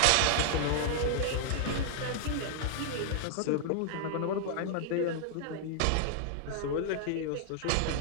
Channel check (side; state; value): both; different; correlation -0.01